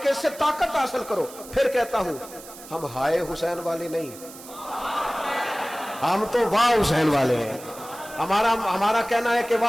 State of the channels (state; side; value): noise; right; hiss, 17 dB below the sound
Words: سے طاقت حاصل کرو. پھر کہتا ہوں ہم ہائے حسین والے نہیں، ہم تو واہ حسین والے ہیں. ہمارا کہنا ہے کہ